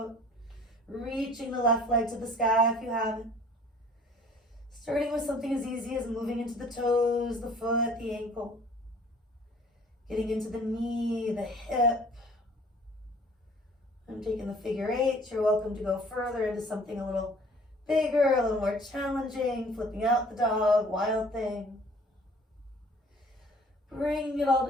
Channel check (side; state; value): both; normal; correlation 0.52